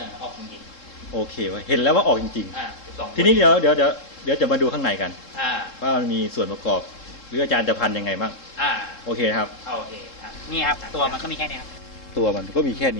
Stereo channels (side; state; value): right; late; 3.7 ms